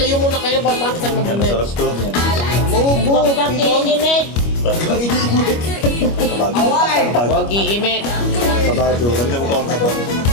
muna kayo. Paano tayo Yan, masarap to. Huwag iimit. Kabado. Ramdam ko ang kabado.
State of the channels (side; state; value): right; late; 25 ms